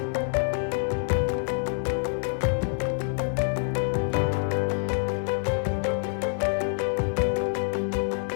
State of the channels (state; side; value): silent; right; 61 dB below the other